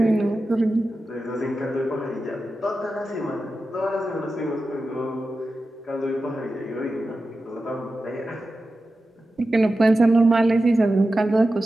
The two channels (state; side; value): normal; both; correlation 0.93